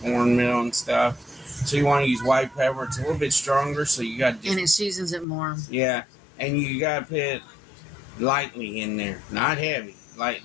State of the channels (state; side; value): drops out; right; at 5.2 s